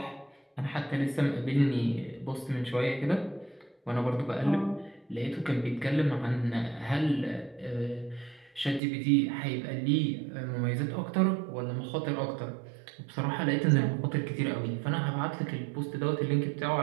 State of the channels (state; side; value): drops out; left; at 8.8 s